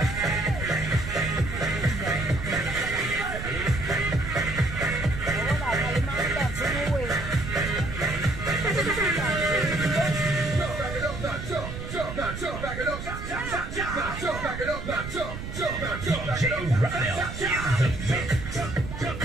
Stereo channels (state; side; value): noise; right; rumble, 8 dB below the sound